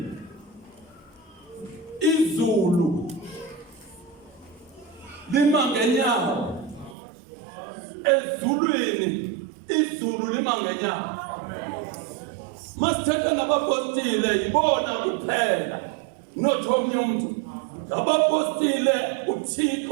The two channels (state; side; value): drops out; left; at 7.0 s